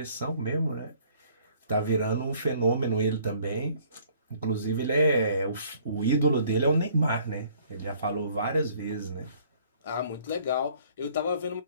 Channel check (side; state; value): both; inverted; correlation -0.58